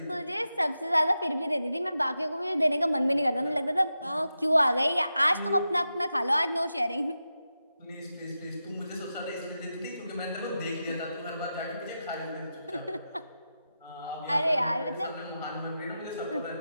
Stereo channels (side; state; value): both; inverted; correlation -0.90